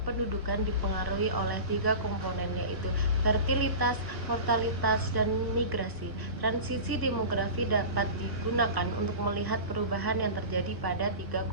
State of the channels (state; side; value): late; left; 1.0 ms